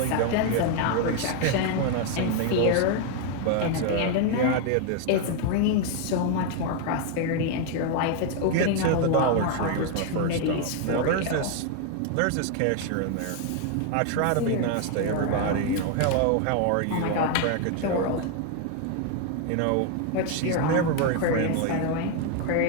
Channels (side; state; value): both; different; correlation 0.00